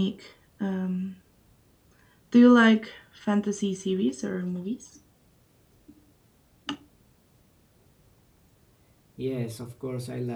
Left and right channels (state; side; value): identical; both; correlation 1.00